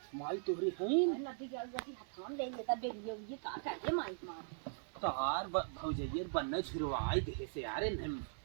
माई तोहरी है नदी के गति हथाम ले ये तब ये का करे माई मार तोहार भौजैयर बनने झुरवाई देह से यारे न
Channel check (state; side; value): silent; left; digital silence